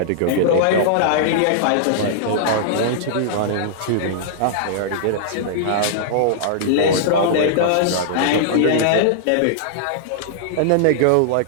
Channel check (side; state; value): both; different; correlation -0.01